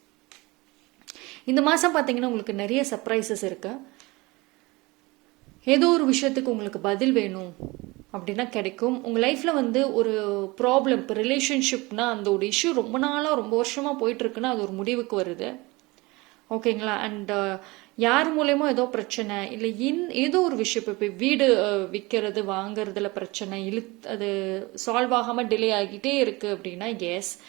இந்த மாதம் பார்த்தீங்கன்னா உங்களுக்கு நிறைய சர்ப்ரைசஸ் இருக்கு. ஏதோ ஒரு விஷயத்துக்கு உங்களுக்கு பதில் வேணும் அப்படின்னா கிடைக்கும். உங்கள் லைஃப்பில் வந்து ஒரு ப்ராப்ளம், இப்போ ரிலேஷன்ஷிப்னா அந்த ஒரு இஷ்யூ ரொம்ப நாளாக ரொம்ப வருஷமாக போயிட்டுருக்குன்னா அது ஒரு முடிவுக்கு வருது. ஓகேங்களா? அண்ட் யார் மூலயமா ஏதோ பிரச்சனை இல்லை ஏதோ ஒரு விஷயம், இப்போ வீடு விற்கிறது வாங்கிறதுல பிரச்சனை அது சால்வ் ஆகாமல் டிலே ஆகிட்டே இருக்குது அப்படின்னா எஸ்,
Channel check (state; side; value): quieter; left; 23.3 dB